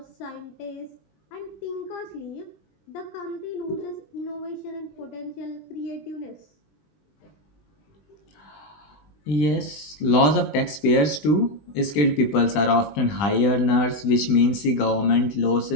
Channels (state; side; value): late; right; 20 ms